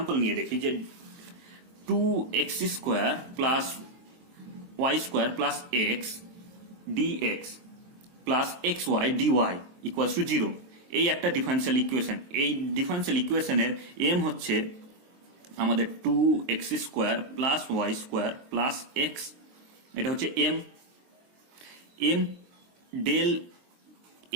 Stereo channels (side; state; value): left; late; 23 ms